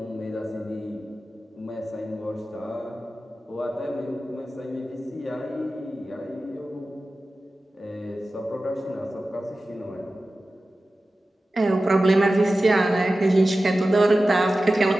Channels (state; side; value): normal; both; correlation 0.95